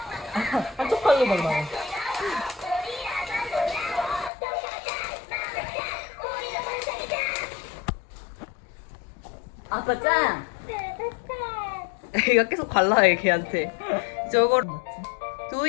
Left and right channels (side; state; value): right; drops out; at 4.3 s